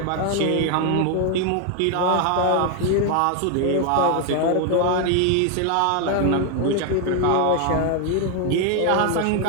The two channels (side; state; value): both; different; correlation 0.01